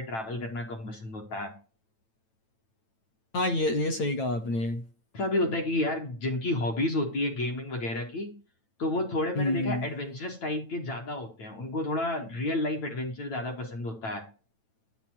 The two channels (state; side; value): late; right; 9.0 ms